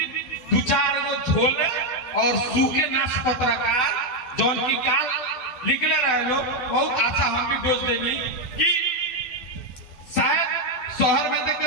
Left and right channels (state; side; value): late; right; 12 ms